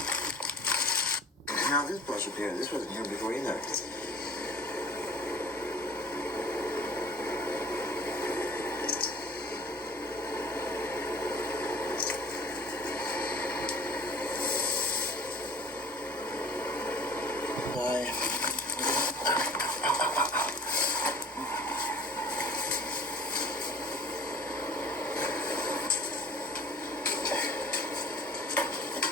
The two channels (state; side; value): normal; both; correlation 0.46